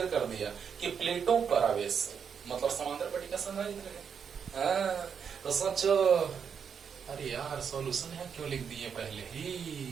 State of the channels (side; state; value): left; quieter; 7.0 dB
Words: कर दिया कि प्लेटों पर आवेश मतलब समांतर पट्टिका संधारित्र है। तो सोचो, अरे यार सॉल्यूशन है क्यों लिख दिए पहले